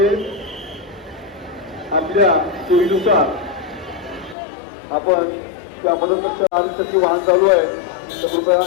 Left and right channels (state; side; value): drops out; right; at 4.4 s